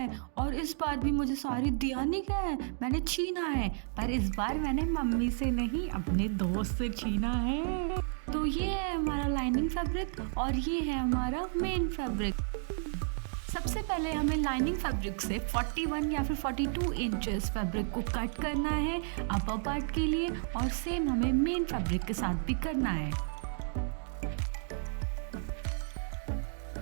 और इस बार भी मुझे साड़ी दिया नहीं गया है, मैंने छीना है। पर इस बार मैंने मम्मी से नहीं, अपने दोस्त से छीना है। तो ये है हमारा लाइनिंग फैब्रिक और ये है हमारा मेन फैब्रिक। सबसे पहले हमें लाइनिंग फैब्रिक से 41 या फिर 42 इंचेस फैब्रिक को कट करना है अपर पार्ट के लिए, और सेम हमें मेन फैब्रिक के साथ भी करना है।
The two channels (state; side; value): silent; left; digital silence